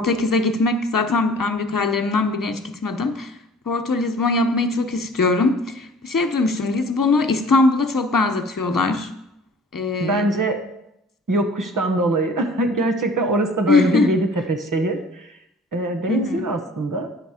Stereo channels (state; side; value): normal; both; correlation 0.48